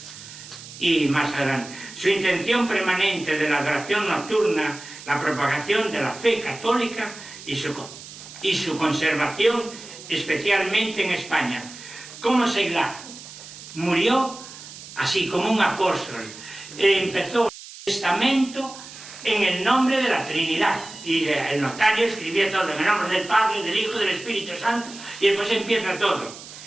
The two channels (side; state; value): right; noise; hiss, 15 dB below the sound